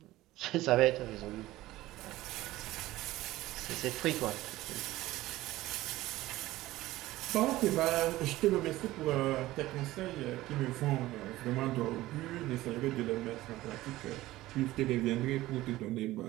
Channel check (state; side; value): quieter; left; 16.9 dB